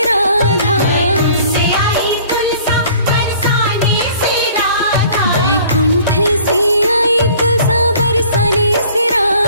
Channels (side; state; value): both; inverted; correlation -0.52